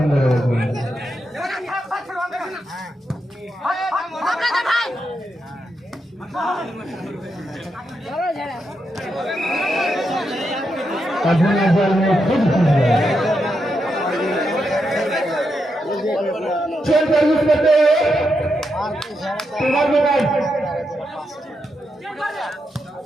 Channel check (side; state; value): both; normal; correlation 0.84